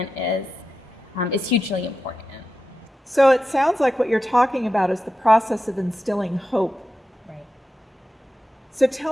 is hugely important. So it sounds like what you're talking about is the process of instilling hope. Right. So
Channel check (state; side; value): normal; both; correlation 0.90